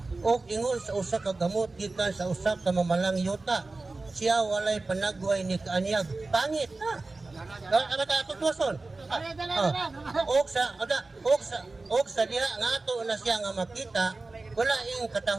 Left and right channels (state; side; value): quieter; left; 3.4 dB